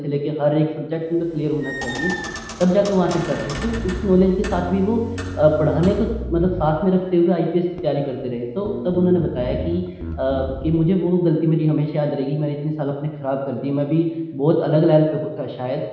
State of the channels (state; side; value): identical; both; correlation 1.00